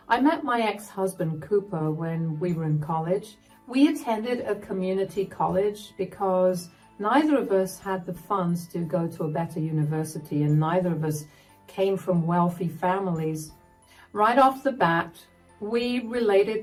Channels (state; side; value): identical; both; correlation 1.00